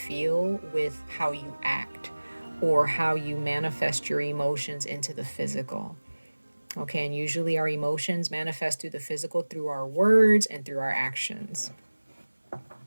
with how you act, or how you manifest your emotions into the physical. Okay, and usually our emotions manifest through the physical through our words and through our actions.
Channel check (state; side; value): inverted; both; correlation -1.00